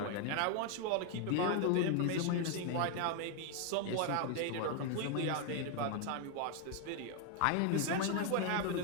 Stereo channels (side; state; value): both; different; correlation 0.01